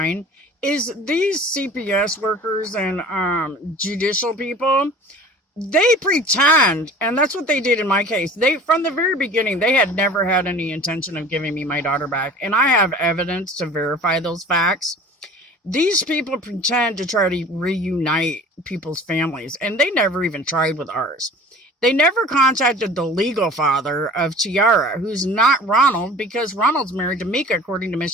is these CPS workers and judicial people, they pretend, and that's what they did in my case. They, from the very beginning, they had never had any intention of giving me my daughter back, and I have evidence to verify those facts. These people pretend to try to reunite people's families, and they never even tried with ours. They never contacted the legal father of Tiara, who's not Ronald, because Ronald's married to Mika according to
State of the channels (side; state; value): both; normal; correlation 0.43